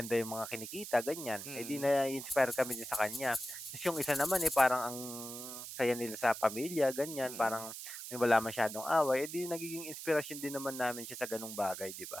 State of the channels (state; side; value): noise; right; hiss, 9 dB below the sound